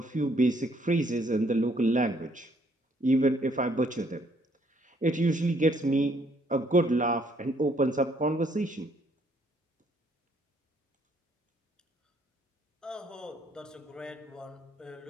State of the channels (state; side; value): normal; both; correlation 0.67